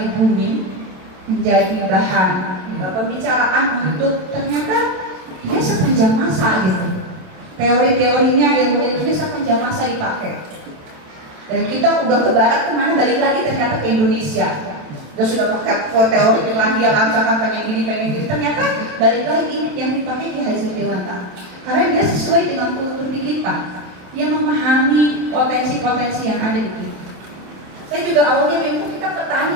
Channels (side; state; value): left; late; 27 ms